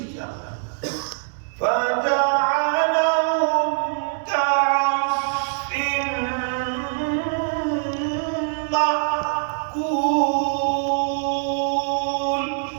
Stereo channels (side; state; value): left; silent; digital silence